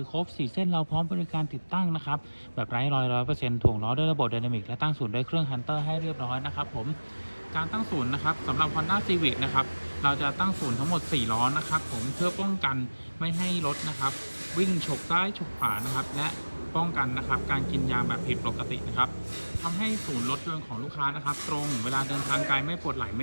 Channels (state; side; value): inverted; both; correlation -1.00